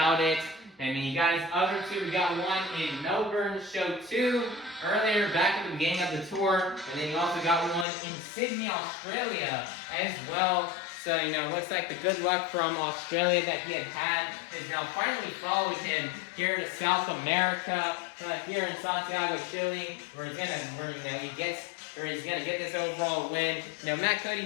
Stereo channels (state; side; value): drops out; right; at 7.9 s